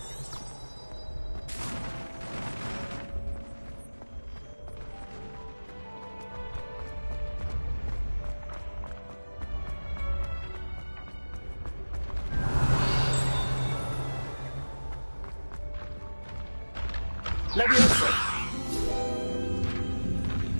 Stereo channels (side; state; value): both; inverted; correlation -1.00